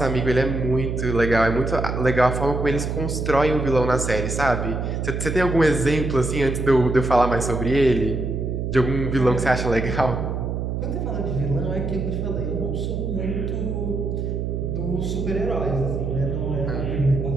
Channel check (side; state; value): right; noise; hum, 2 dB below the sound